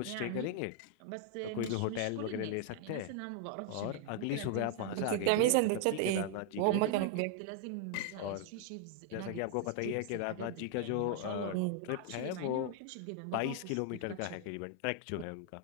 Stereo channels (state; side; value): different; both; correlation 0.00